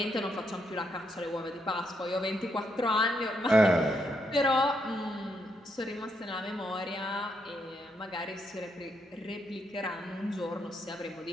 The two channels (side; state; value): both; normal; correlation 0.78